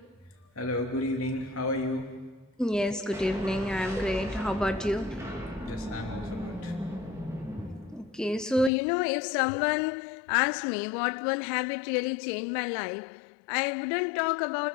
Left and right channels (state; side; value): drops out; right; at 8.7 s